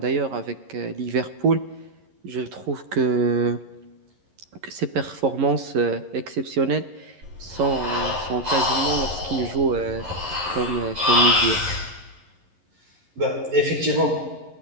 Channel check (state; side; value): late; left; 11 ms